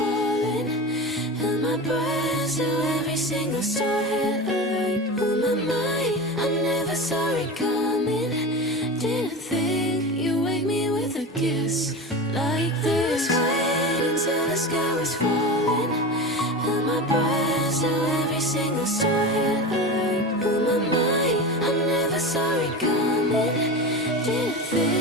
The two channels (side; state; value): both; normal; correlation 0.27